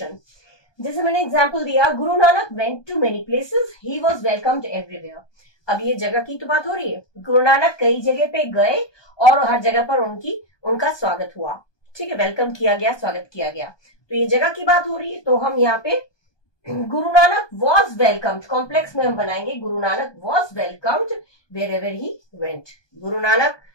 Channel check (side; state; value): right; late; 1.2 ms